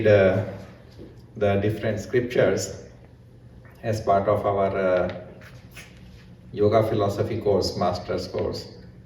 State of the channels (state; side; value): identical; both; correlation 1.00